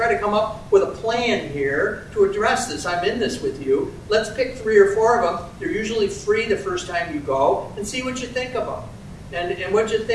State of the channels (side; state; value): both; identical; correlation 1.00